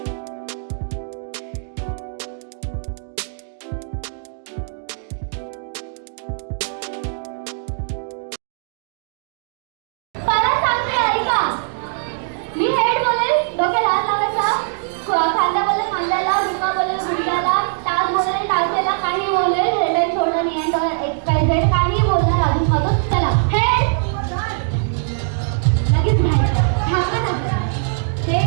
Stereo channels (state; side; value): silent; left; digital silence